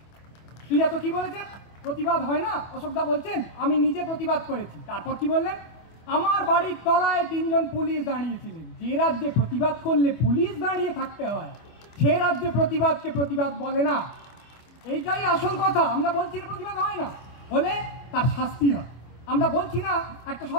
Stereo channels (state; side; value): late; right; 25 ms